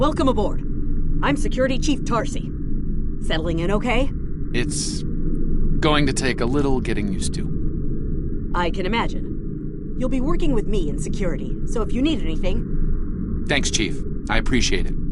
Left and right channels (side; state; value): both; identical; correlation 1.00